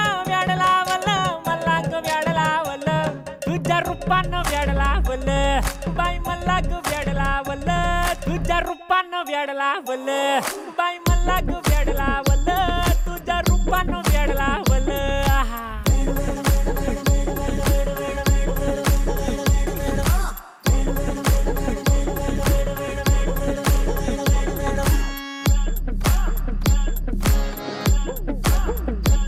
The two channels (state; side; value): identical; both; correlation 1.00